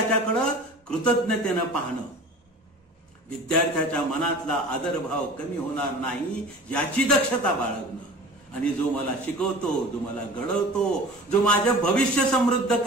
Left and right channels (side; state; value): both; normal; correlation 0.41